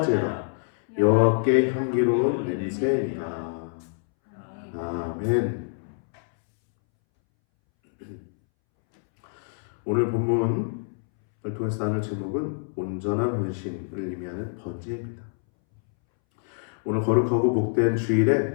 여호와께 향기로운 냄새니라. 아멘. 오늘 본문을 통해서 나눌 제목은 온전한 헌신을 의미하는 번제입니다. 오늘 거룩하고 복된 주일에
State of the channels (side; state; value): right; silent; 61 dB below the other